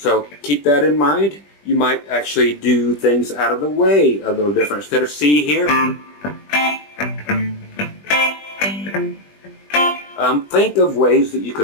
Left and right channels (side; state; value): right; late; 20 ms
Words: keep that in mind. You might actually do things out of the way a little different. Instead of C here, think of ways that you